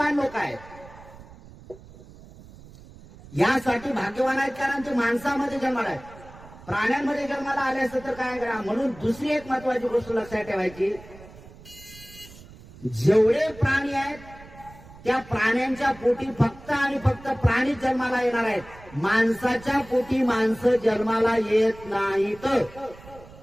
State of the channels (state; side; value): noise; right; rumble, 20 dB below the sound